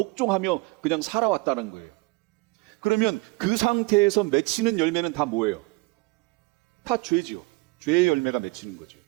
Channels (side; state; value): left; quieter; 25.3 dB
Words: 그냥 살아왔다는 거예요. 그러면 그 상태에서 맺히는 열매는 다 뭐예요? 다 죄지요. 죄의 열매가 맺히는 거죠.